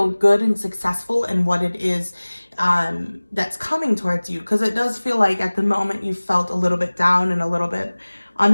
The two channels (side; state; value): both; inverted; correlation -1.00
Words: good and successful in what it is that's coming towards you. Because it does feel like at the moment you felt a little bit down and a little bit